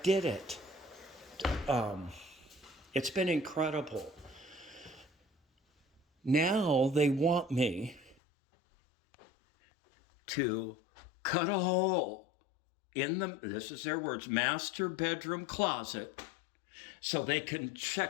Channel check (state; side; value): drops out; right; at 8.2 s